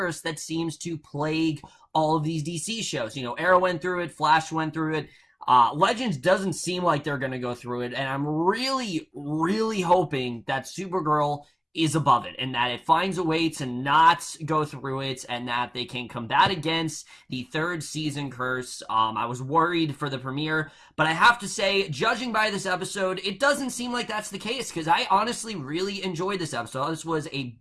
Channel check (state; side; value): identical; both; correlation 1.00